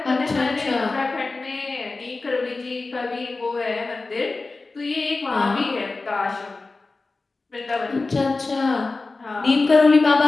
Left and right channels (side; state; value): right; quieter; 3.6 dB